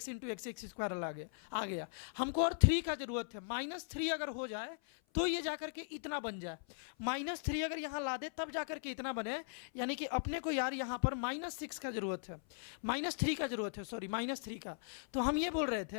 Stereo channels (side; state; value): right; silent; 52 dB below the other